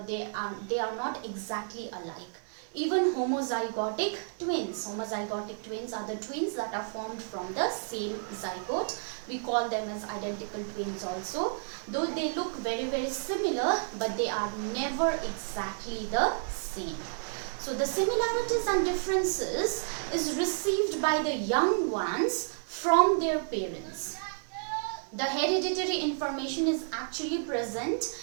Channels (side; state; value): left; silent; digital silence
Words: they are not exactly alike. Even homozygotic twins are the twins that are formed from the same zygote. We call them as identical twins also. Though they look very similar, but they are never exactly the same. So the similarities and differences is received by the young ones from their parents. The hereditary information is actually present